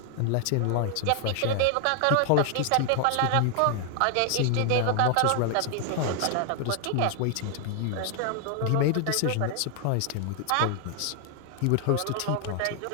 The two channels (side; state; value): both; different; correlation 0.00